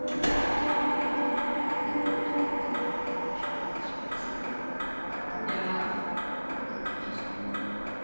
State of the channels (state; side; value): inverted; both; correlation -1.00